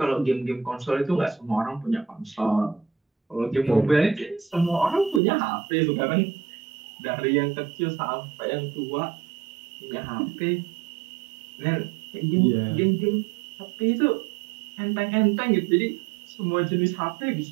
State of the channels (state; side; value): drops out; left; at 5.2 s